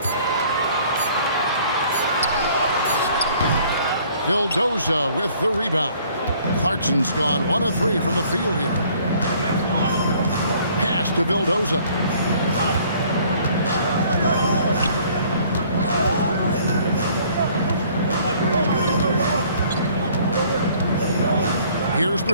Vildoza with the rebound. Clarkson's gone 1 of 3 from the field here. Pass to Vildoza. Here's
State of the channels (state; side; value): inverted; both; correlation -0.58